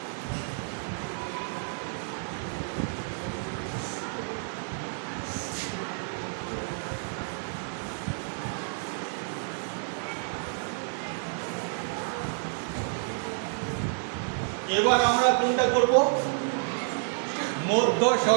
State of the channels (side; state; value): left; silent; 58 dB below the other